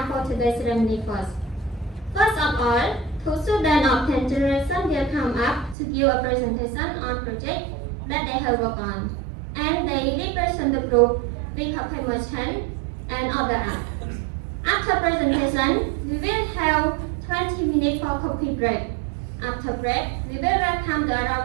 for today's ceremony first. First of all, two students of 10th generation will come up to give a presentation on project that they have worked on, and they represent the group with a merchant and other art. After presentation, we will have 20 minutes for coffee break. After break, we will welcome the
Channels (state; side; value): drops out; left; at 5.8 s